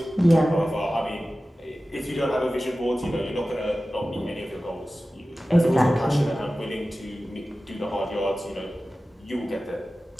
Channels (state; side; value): normal; both; correlation 0.95